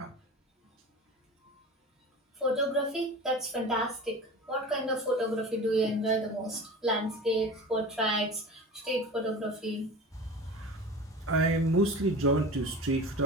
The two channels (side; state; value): both; normal; correlation 0.34